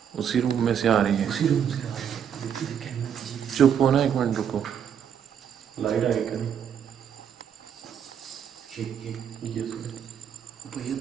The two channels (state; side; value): quieter; left; 8.4 dB